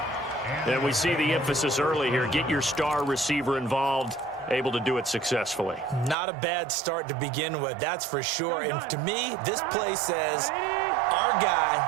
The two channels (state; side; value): drops out; left; at 6.2 s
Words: And we see the emphasis early here. Get your star receiver involved. Able to do it successfully. Not a bad start to begin with, that's for sure. And to me, this play says our